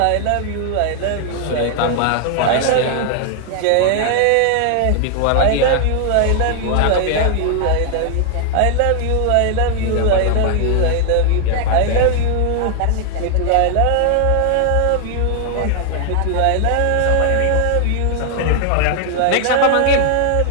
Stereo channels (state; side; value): different; both; correlation 0.00